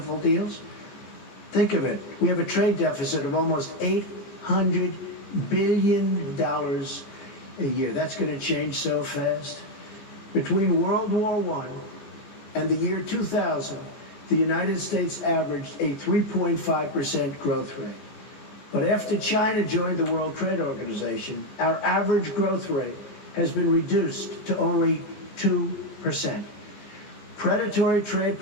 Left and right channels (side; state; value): right; late; 14 ms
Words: deals? Think of it. We have a trade deficit of almost $800 billion a year. That's going to change so fast. Between World War I and the year 2000, the United States averaged a 3.5% growth rate. But after China joined the World Trade Organization, our average growth rate has been reduced to only 2%. Predatory trade